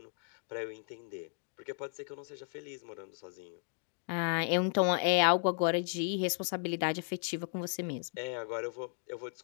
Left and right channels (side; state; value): right; silent; 54 dB below the other